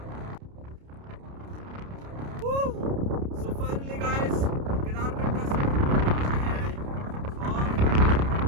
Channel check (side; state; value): left; late; 29 ms